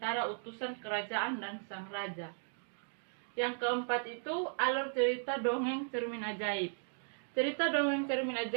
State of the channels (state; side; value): silent; left; digital silence